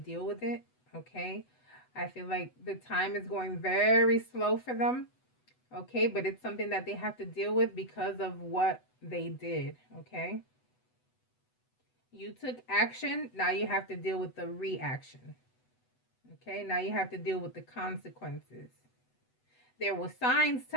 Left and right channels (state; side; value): late; right; 8.0 ms